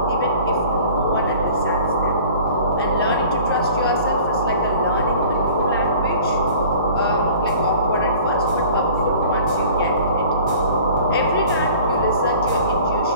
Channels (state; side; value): inverted; both; correlation -0.46